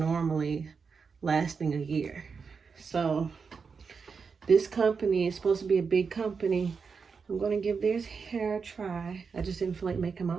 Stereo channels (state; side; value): quieter; left; 5.5 dB